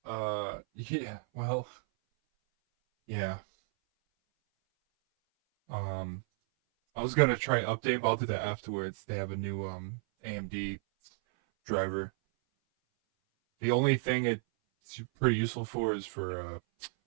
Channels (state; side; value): silent; left; 56 dB below the other